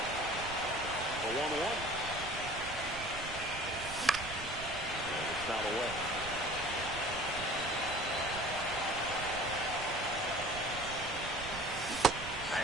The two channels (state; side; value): noise; right; rumble, 12 dB below the sound